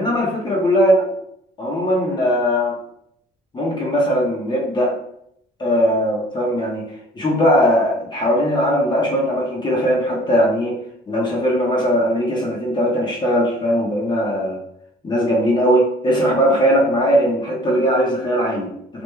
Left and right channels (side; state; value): both; normal; correlation 0.52